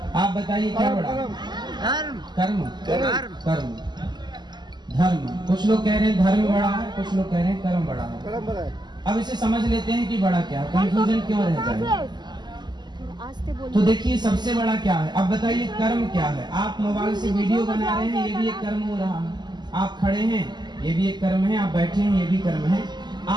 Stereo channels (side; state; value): left; late; 0.21 ms